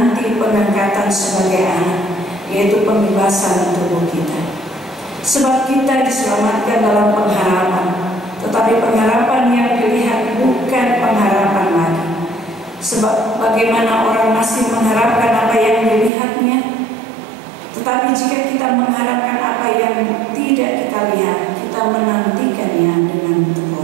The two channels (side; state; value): left; drops out; at 16.1 s